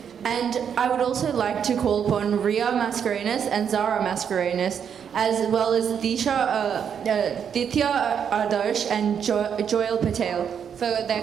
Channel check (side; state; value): left; quieter; 7.8 dB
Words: And I would also like to call upon Ria Mascarenas and Zara Mascarenas, as well as Ditya Adarsh and Joel Patel for their